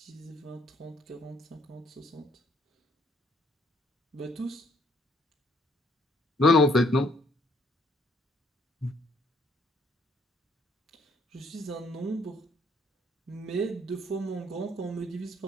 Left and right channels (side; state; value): both; normal; correlation 0.66